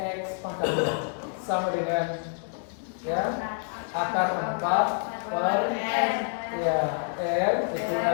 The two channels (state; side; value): silent; right; 60 dB below the other